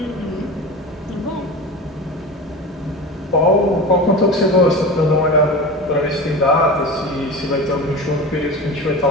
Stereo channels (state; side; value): normal; both; correlation 0.31